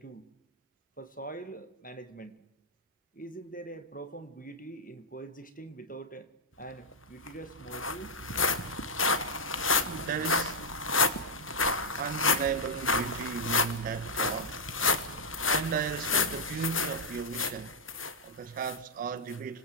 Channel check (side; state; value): both; normal; correlation -0.04